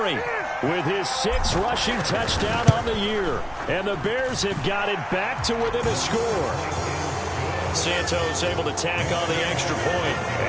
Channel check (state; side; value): identical; both; correlation 1.00